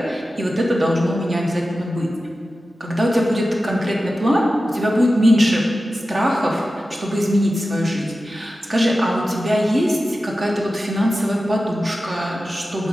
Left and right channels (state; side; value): normal; both; correlation 0.93